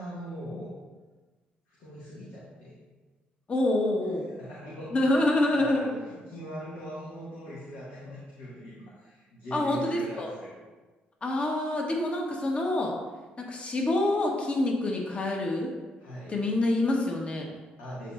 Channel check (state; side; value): normal; both; correlation 0.78